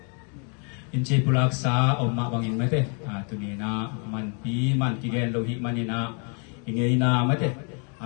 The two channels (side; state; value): right; quieter; 39.0 dB